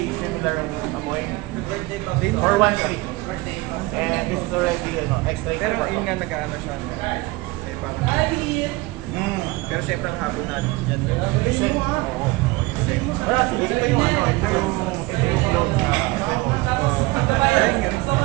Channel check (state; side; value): quieter; left; 21.8 dB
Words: similar ang amoy. For 1.3. And this is already extra. Pero yun nga nag-ano siya. Eh, parang, pero syempre ang habol natin dyan. Listen. Oo. Pero actually, ito yung clone.